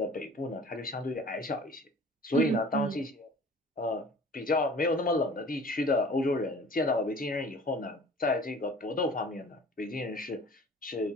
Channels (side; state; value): both; normal; correlation 0.47